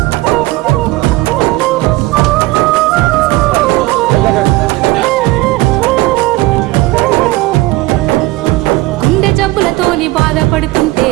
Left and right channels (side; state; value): left; quieter; 19.8 dB